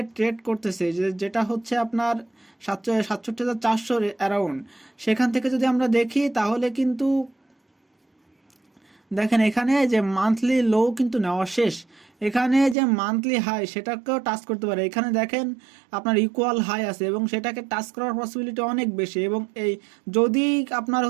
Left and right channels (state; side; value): drops out; left; at 12.8 s